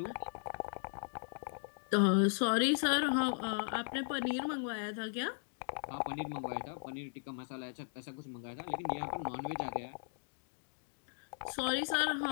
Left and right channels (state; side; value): silent; right; digital silence